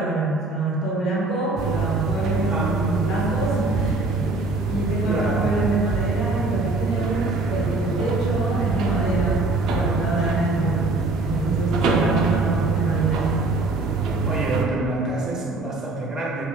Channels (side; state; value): left; quieter; 3.1 dB